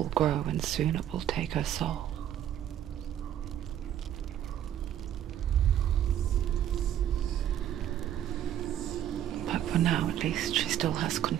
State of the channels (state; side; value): quieter; left; 11.0 dB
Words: grow and soon it will take her soul. But for now, at least, she still has